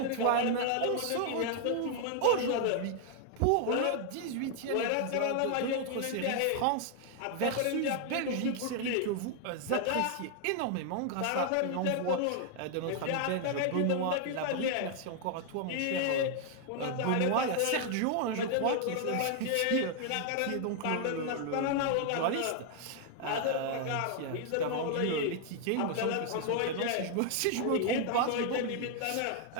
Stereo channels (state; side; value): different; both; correlation 0.00